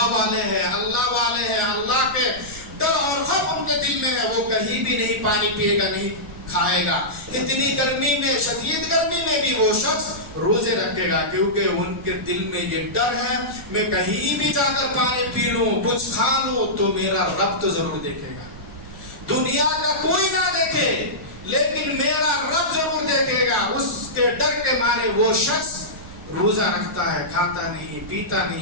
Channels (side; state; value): right; noise; rumble, 17 dB below the sound